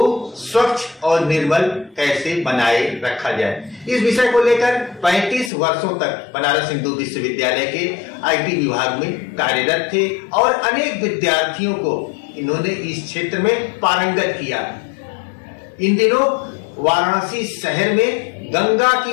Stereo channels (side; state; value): right; drops out; at 5.5 s